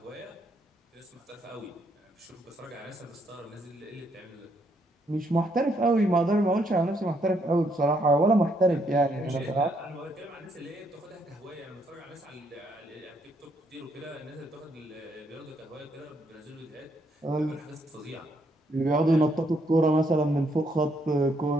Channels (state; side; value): normal; both; correlation 0.73